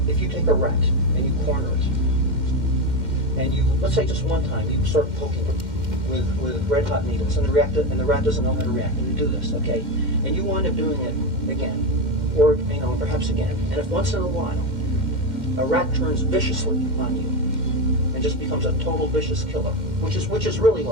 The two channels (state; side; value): late; left; 2.1 ms